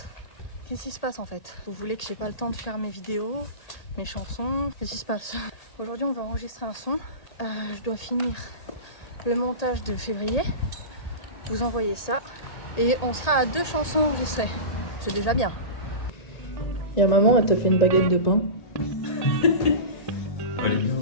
Qu'est-ce qui se passe en fait? Vous voulez que j'ai pas le temps de faire mes vidéos, mes chansons? Qu'est-ce qui se passe? Aujourd'hui on va enregistrer un son. Je dois finir le montage de février. Vous envoyez ça. Et on sera à 2 chansons enregistrées. C'est déjà bien. Et maman, elle te fait une baguette de pain. Elle est bien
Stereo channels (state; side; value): late; right; 1.8 ms